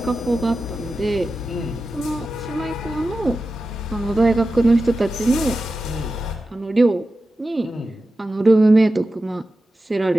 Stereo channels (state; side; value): normal; both; correlation 0.93